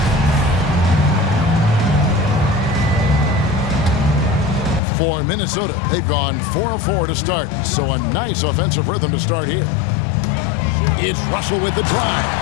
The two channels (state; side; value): drops out; right; at 4.8 s